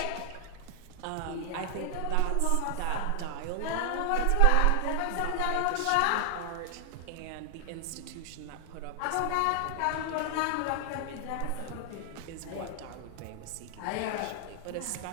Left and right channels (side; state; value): both; different; correlation 0.00